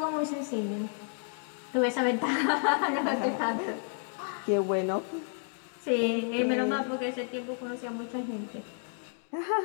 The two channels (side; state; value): right; silent; 57 dB below the other